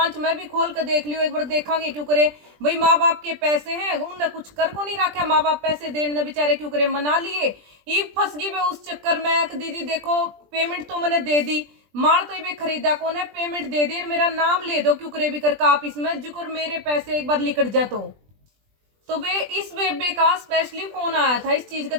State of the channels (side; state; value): left; late; 20 ms